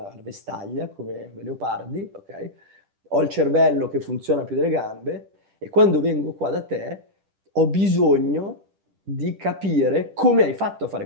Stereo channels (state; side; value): late; left; 10 ms